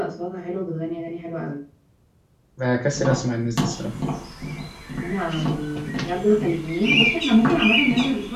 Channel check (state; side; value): identical; both; correlation 1.00